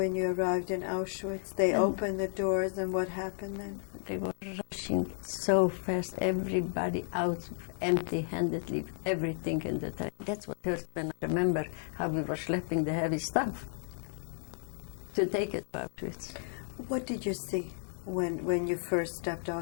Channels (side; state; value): right; silent; 56 dB below the other